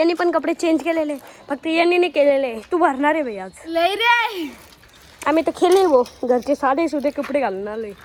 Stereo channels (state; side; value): identical; both; correlation 1.00